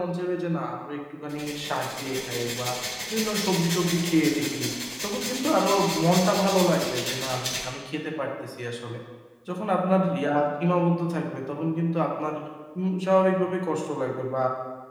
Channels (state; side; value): identical; both; correlation 1.00